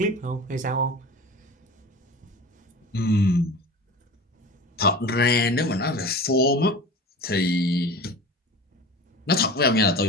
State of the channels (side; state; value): both; normal; correlation 0.35